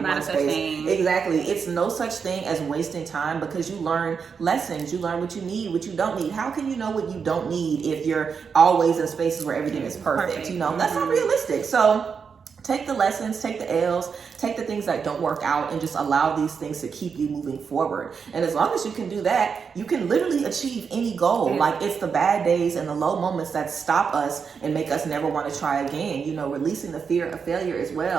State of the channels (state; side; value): quieter; left; 6.0 dB